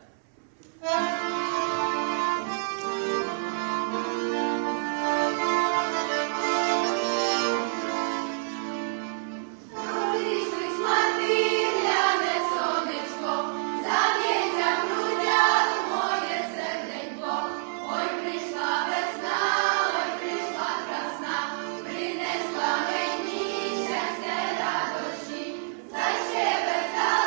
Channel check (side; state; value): left; silent; 60 dB below the other